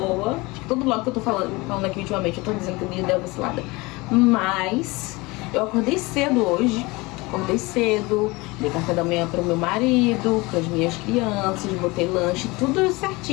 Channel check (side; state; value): right; quieter; 23.6 dB